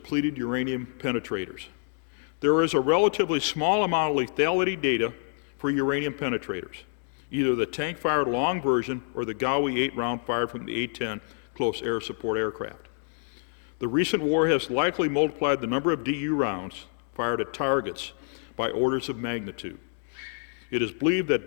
uranium penetrators. There is a relatively small amount of lethality data for uranium penetrators, either the tank-fired long version or the Gaui 8 round fired from the A-10 close air support aircraft. The recent war has likely multiplied the number of DU rounds fired at targets by orders of magnitude. It is believed that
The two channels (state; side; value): silent; right; digital silence